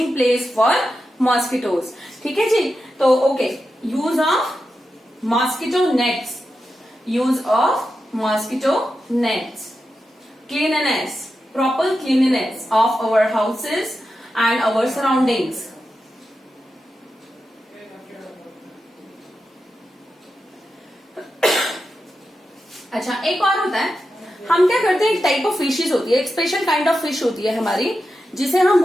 place for mosquitoes. ठीक है जी. तो okay, use of mosquito nets, use of mosquito nets, cleanliness, proper cleanliness of our houses and our surroundings. अच्छा, एक और होता है, हम क्या करते हैं, एक टाइप ऑफ फिशेस होती है, एक स्पेशल काइंड ऑफ फिश होती है हमारी, जिसे हम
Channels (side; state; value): both; normal; correlation 0.90